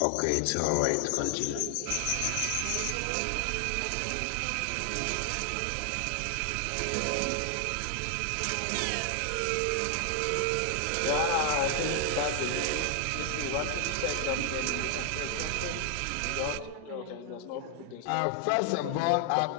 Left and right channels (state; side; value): different; both; correlation 0.00